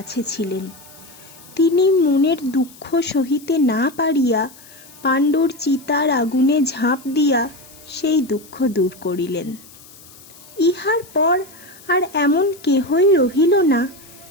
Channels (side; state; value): left; noise; hiss, 22 dB below the sound